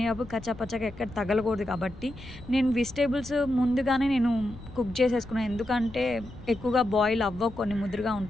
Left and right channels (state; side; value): noise; left; rumble, 16 dB below the sound